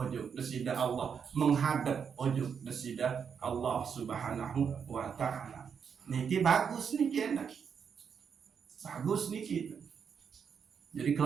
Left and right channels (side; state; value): left; quieter; 6.9 dB